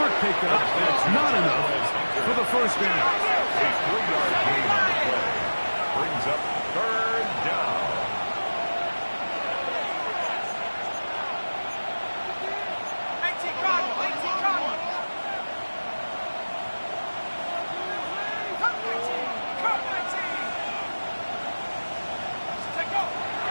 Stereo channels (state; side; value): inverted; both; correlation -1.00